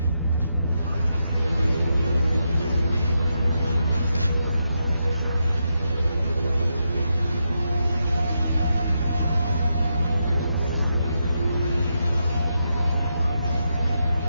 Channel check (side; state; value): both; inverted; correlation -0.84